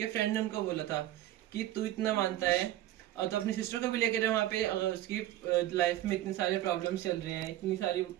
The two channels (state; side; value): quieter; left; 14.0 dB